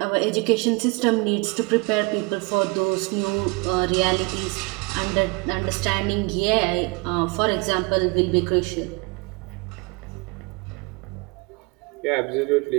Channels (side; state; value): left; quieter; 27.9 dB